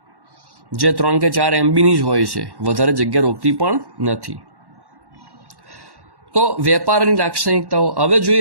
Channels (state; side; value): late; left; 1.1 ms